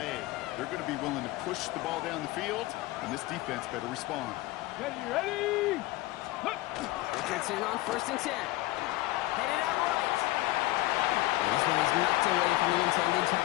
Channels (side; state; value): right; quieter; 18.7 dB